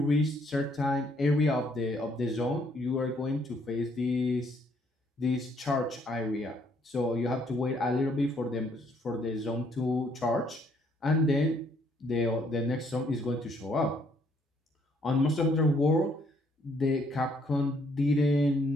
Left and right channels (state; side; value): normal; both; correlation 0.67